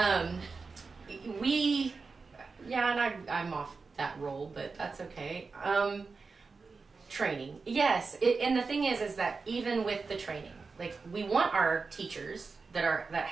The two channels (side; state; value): left; quieter; 4.5 dB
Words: I'm off that role, but that's okay. Training, yes. And the thing is that even with the training, like, we want our teachers that